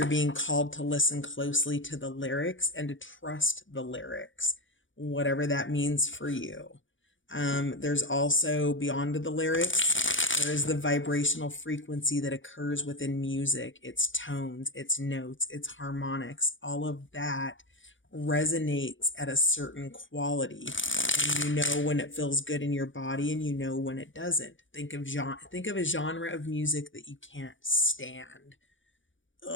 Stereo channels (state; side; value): late; right; 0.56 ms